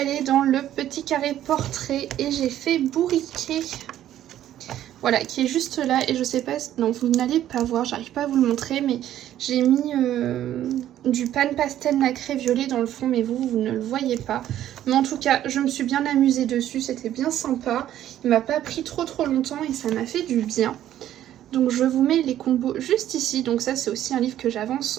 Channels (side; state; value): left; quieter; 12.0 dB